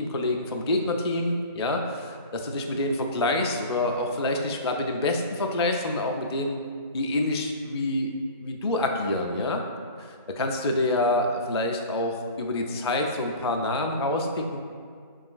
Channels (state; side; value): inverted; both; correlation -0.37